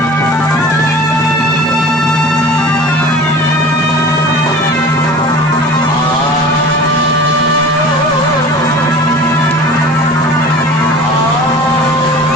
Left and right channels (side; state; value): both; normal; correlation 0.41